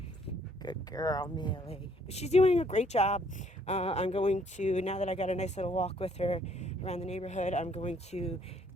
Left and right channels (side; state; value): both; normal; correlation 0.64